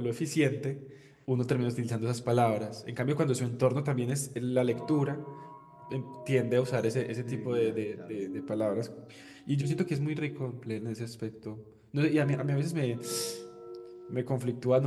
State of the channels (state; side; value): identical; both; correlation 1.00